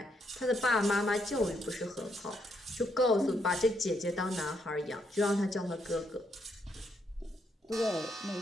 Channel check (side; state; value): both; normal; correlation 0.75